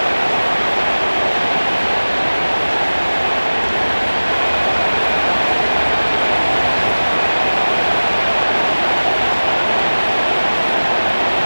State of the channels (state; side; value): inverted; both; correlation -1.00